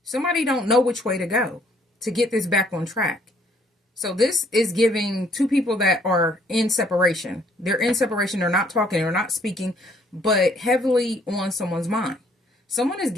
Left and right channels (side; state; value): both; normal; correlation 0.64